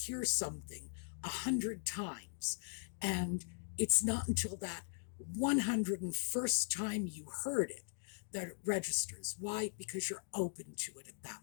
something 100 times, and it's not until that 101st time you heard it that it registers. Why? Because you're open to it at that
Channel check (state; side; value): silent; right; digital silence